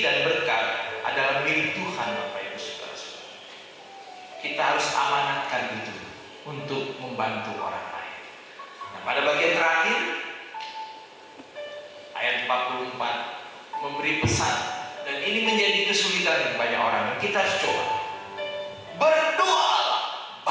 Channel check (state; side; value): identical; both; correlation 1.00